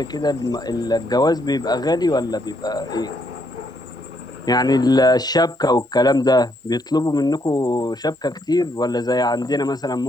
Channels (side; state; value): both; normal; correlation 0.74